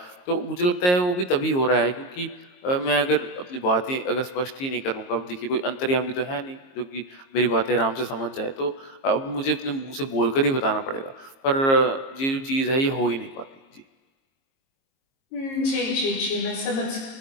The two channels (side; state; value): right; late; 22 ms